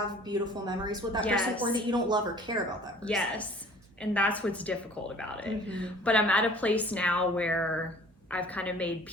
beautiful memories with that person or that you don't love or care about that person. Yes. And that's what's difficult about it. But I'm at a place now where I've kind of made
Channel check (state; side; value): normal; both; correlation 0.50